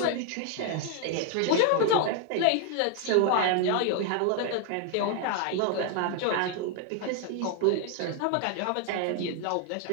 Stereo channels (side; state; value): both; different; correlation 0.00